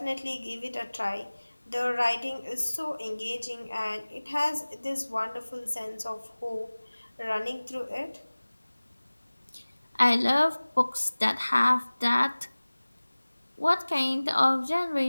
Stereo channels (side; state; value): both; inverted; correlation -1.00